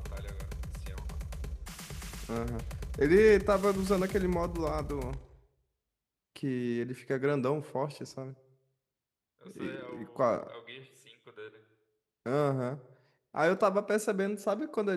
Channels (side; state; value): both; identical; correlation 1.00